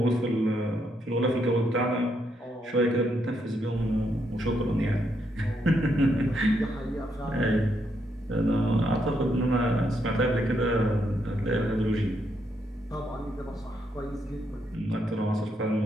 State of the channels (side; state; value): both; normal; correlation 0.77